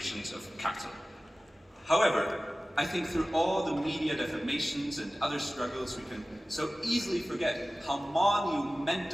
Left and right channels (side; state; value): both; normal; correlation 0.96